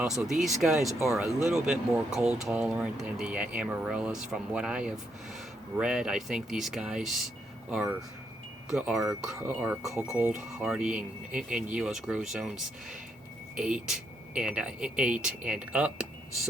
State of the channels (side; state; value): both; normal; correlation 0.77